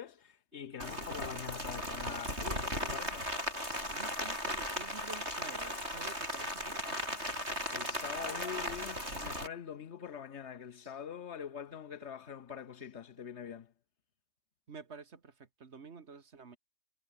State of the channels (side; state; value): left; late; 3.2 ms